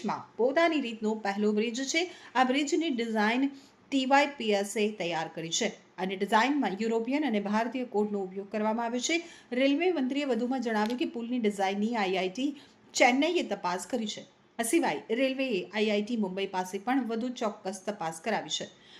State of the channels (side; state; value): both; identical; correlation 1.00